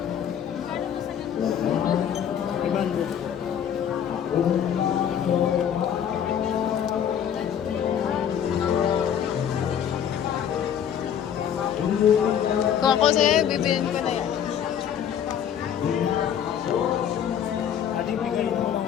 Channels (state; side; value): quieter; right; 9.0 dB